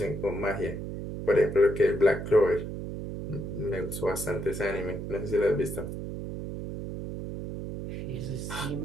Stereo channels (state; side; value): noise; right; hum, 6 dB below the sound